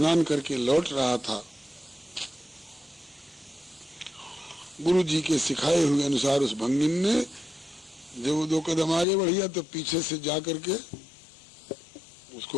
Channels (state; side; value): drops out; right; at 9.1 s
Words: करके लौट रहा था, गुरु जी के सिखाए हुए अनुसार उस भंगिन ने जब वो 2 कदम आगे बढ़िया तो पीछे से जा करके